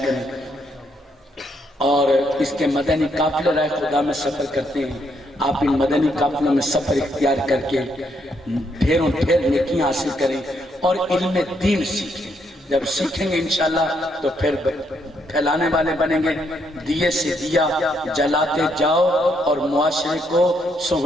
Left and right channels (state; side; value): normal; both; correlation 0.75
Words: کریں، اور اس کے مدنی قافلے رائے خدا میں سفر کرتے ہیں۔ آپ ان مدنی قافلوں میں سفر اختیار کر کے ڈھیروں ڈھیر نیکیاں حاصل کریں اور علم دین سیکھیں۔ جب سیکھیں گے انشاءاللہ تو پھر پھیلانے والے بنیں گے۔ دیے سے دیا جلاتے جاؤ اور معاشرے کو